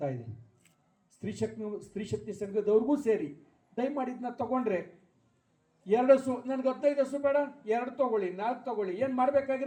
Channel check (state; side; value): identical; both; correlation 1.00